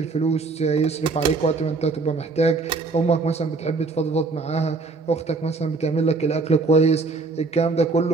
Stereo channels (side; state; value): left; quieter; 3.9 dB